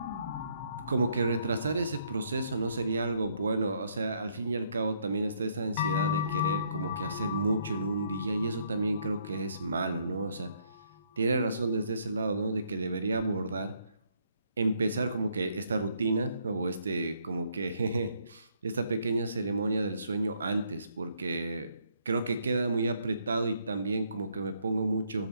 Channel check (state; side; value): inverted; both; correlation -0.70